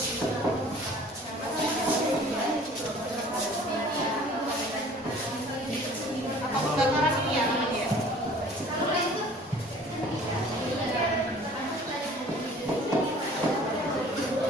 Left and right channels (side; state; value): both; normal; correlation 0.50